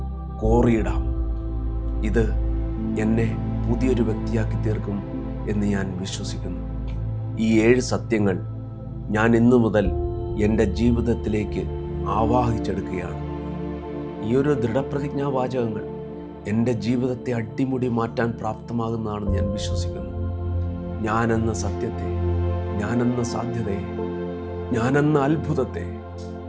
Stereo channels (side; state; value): both; identical; correlation 1.00